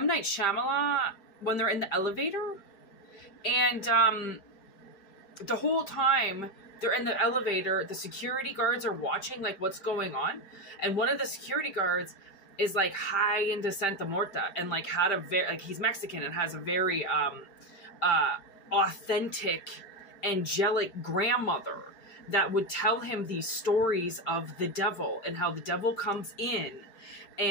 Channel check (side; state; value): right; late; 5.1 ms